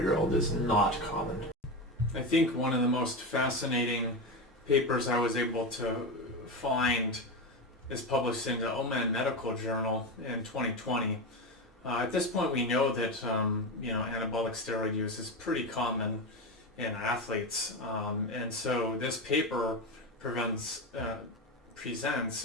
is not common. I think one of the most fascinating papers I was able to find is published in the OMAN Medical Journal in 2020. At this point, we know that anabolic steroid use is pretty common in athletes, and so this paper presents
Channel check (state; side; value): normal; both; correlation 0.17